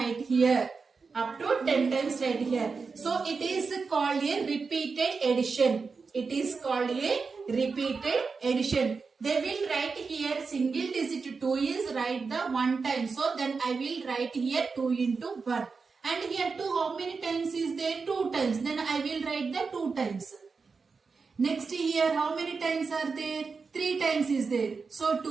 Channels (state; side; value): quieter; left; 4.8 dB